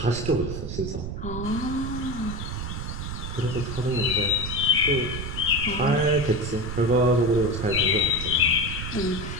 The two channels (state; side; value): noise; right; rumble, 6 dB below the sound